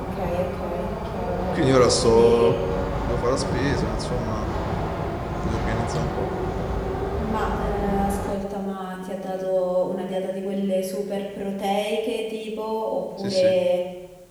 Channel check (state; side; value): identical; both; correlation 1.00